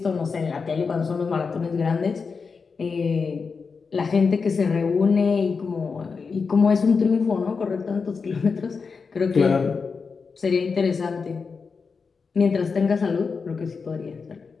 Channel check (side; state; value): right; quieter; 5.1 dB